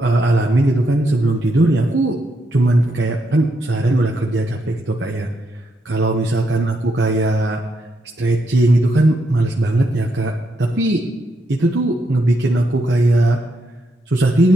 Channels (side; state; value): both; normal; correlation 0.79